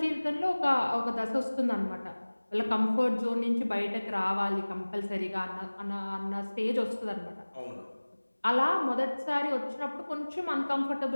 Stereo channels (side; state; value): both; inverted; correlation -1.00